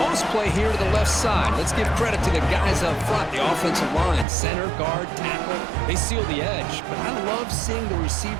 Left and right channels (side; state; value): left; drops out; at 4.2 s